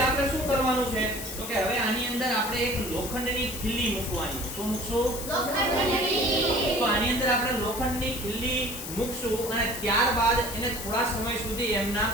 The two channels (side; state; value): left; noise; hiss, 8 dB below the sound